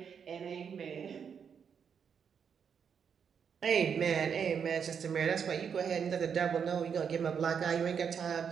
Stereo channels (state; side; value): quieter; left; 7.0 dB